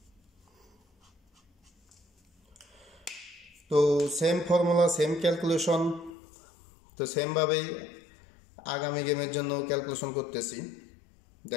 তো সেম ফর্মুলা, সেম ক্যালকুলেশন, তো সেমভাবেই আগামী গেমের জন্য ক্যালকুলেশন করতেছি।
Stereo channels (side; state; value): right; drops out; at 6.2 s